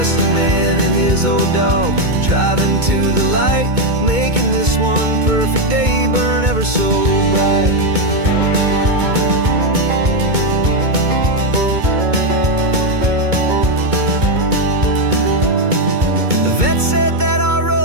a man and his old dog, driving to the light, making this one perfect day burn ever so bright. Said that our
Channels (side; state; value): left; late; 2.2 ms